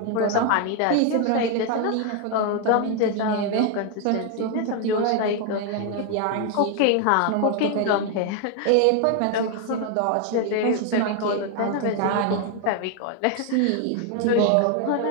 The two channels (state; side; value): different; both; correlation 0.01